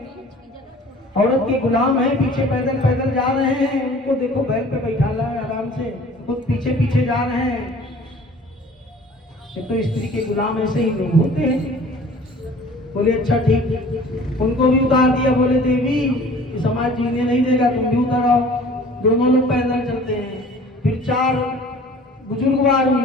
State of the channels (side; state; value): both; normal; correlation 0.48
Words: औरत के गुलाम हैं, पीछे पैदल पैदल जा रहे हैं, उनको देखो बैल पे बैठा ला है आराम से, खुद पीछे पीछे जा रहे हैं। तो स्त्री के गुलाम ऐसे ही लोग होते हैं। बोले अच्छा ठीक, उनको भी उतार दिया। बोले देवी समाज जीने नहीं देगा, तुम भी उतर आओ। दोनों लोग पैदल चलते हैं। फिर 4 बुजुर्गवार